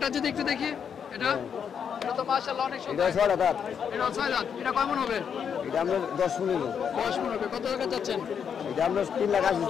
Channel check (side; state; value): right; quieter; 7.4 dB